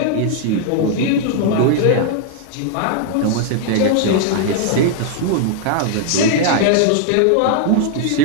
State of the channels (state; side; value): different; both; correlation 0.00